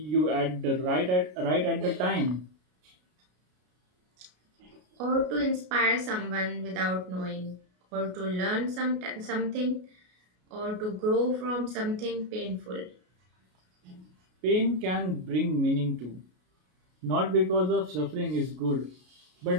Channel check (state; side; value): late; left; 33 ms